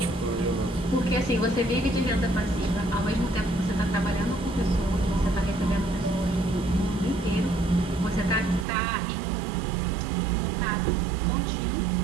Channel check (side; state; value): left; drops out; at 8.7 s